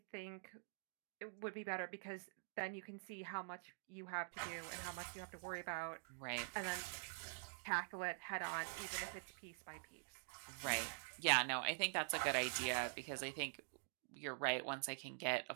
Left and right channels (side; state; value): left; silent; digital silence